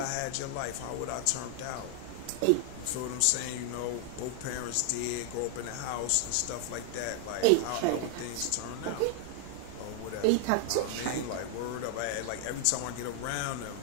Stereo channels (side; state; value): both; different; correlation 0.00